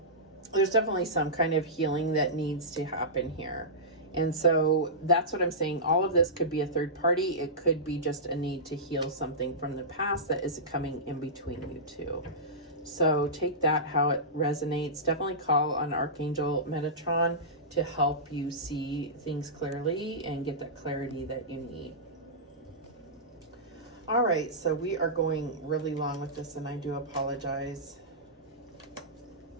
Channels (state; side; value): normal; both; correlation -0.17